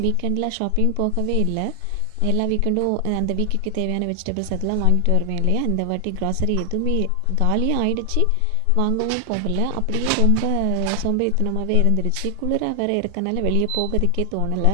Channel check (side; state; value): both; different; correlation 0.00